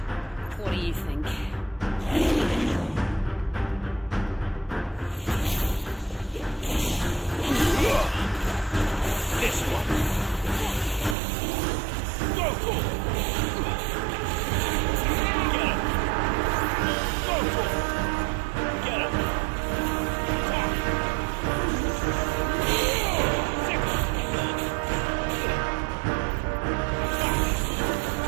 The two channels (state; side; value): drops out; left; at 11.2 s